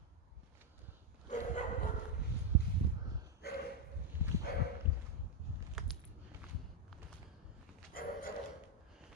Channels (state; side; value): normal; both; correlation 0.03